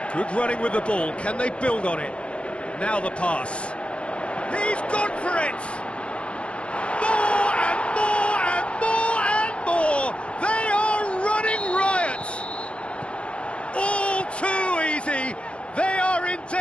Good running with the ball. Can they build on it? Now the pass. He's gone for it. More and more and more and more. They are running riot. All too easy. They are in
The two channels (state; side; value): late; right; 0.059 ms